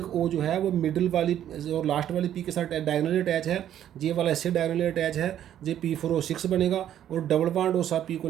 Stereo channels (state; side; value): quieter; left; 10.9 dB